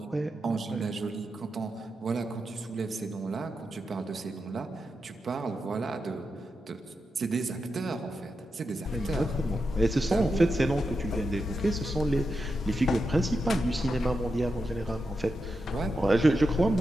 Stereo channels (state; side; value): normal; both; correlation 0.88